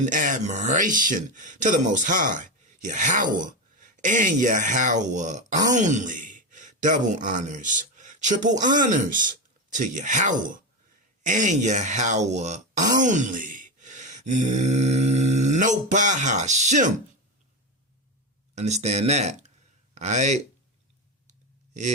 admiration to the Most High, Yahweh, and Yahweh only. Double honors, triple honors to Yahweh and Yahweh only. No Bahashim. Understand that? Alright?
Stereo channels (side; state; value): both; normal; correlation 0.15